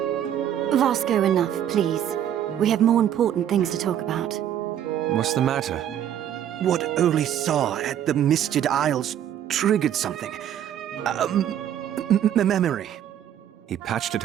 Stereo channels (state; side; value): quieter; left; 10.3 dB